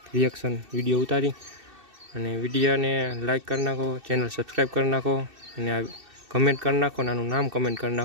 રિએક્શન વિડીયો ઉતારી અને વિડીયોને લાઈક કરી નાખો, ચેનલ સબસ્ક્રાઈબ કરી નાખો અને આ કમેન્ટ કરી નાખો, અને આનું નામ કમેન્ટ કરી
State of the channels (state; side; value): late; left; 2.6 ms